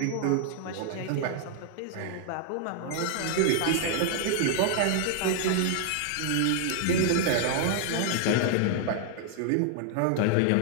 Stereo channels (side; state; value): both; different; correlation -0.01